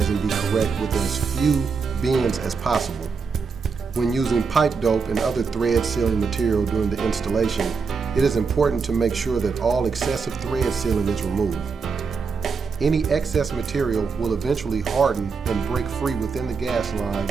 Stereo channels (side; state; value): left; quieter; 5.2 dB